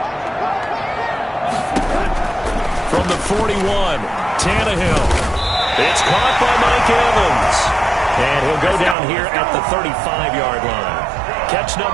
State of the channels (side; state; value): left; drops out; at 9.0 s